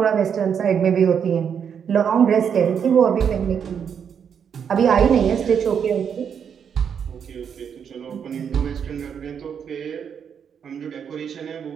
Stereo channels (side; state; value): left; quieter; 7.6 dB